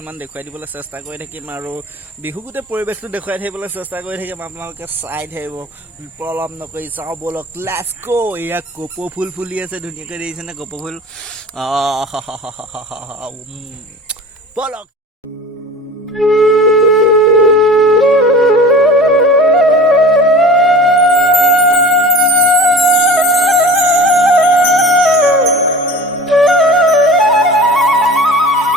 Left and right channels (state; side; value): normal; both; correlation 0.38